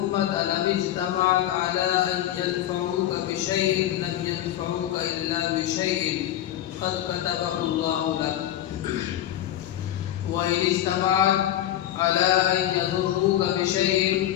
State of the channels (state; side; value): quieter; right; 12.4 dB